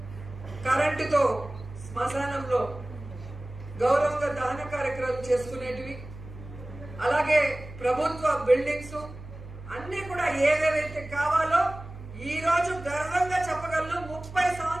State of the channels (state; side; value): noise; right; hum, 14 dB below the sound